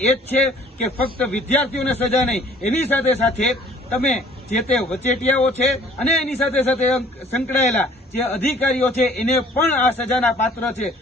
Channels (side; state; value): both; normal; correlation 0.54